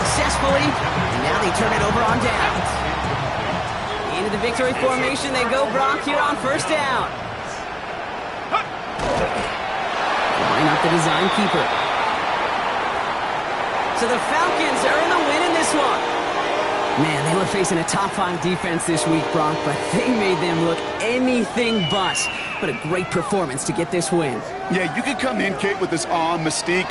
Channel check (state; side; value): identical; both; correlation 1.00